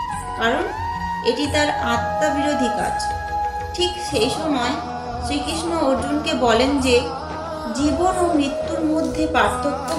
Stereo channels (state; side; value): identical; both; correlation 1.00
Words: কারণ এটি তার আত্মা বিরোধী কাজ। ঠিক সেই সময় শ্রীকৃষ্ণ অর্জুনকে বলেন যে জীবন ও মৃত্যুর মধ্যে পার্থক্য